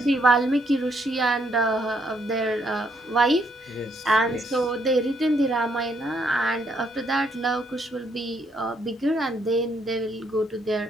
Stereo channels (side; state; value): both; normal; correlation 0.72